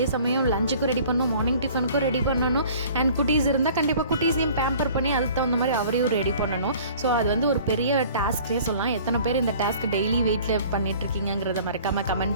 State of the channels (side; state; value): both; inverted; correlation -0.49